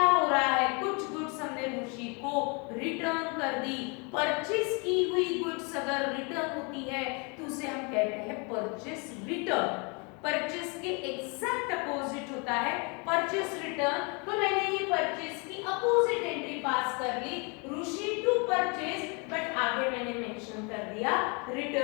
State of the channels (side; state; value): right; quieter; 32.4 dB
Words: हो रहा है? कुछ गुड्स हमने ऋषि को रिटर्न कर दी। परचेस की हुई गुड्स अगर रिटर्न होती है तो उसे हम कहते हैं परचेस रिटर्न। परचेस के एग्जैक्ट अपोजिट होता है परचेस रिटर्न। तो मैंने ये परचेस की अपोजिट एंट्री पास कर ली, ऋषि टू परचेस, बट आगे मैंने मेंशन कर दिया